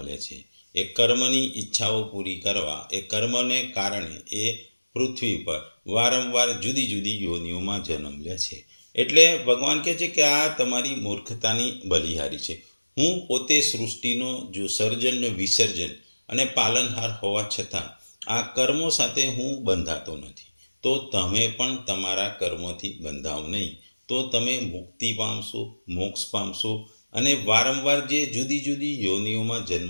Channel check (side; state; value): both; inverted; correlation -1.00